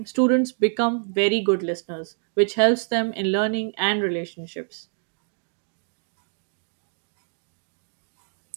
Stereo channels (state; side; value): silent; left; 56 dB below the other